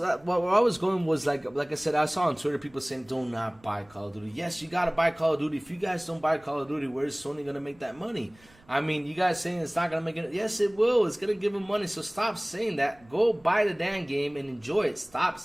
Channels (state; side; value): noise; right; rumble, 28 dB below the sound